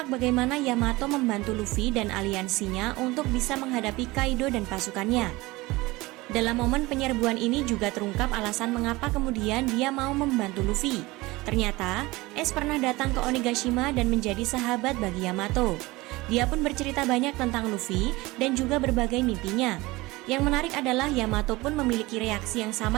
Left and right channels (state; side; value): quieter; left; 21.1 dB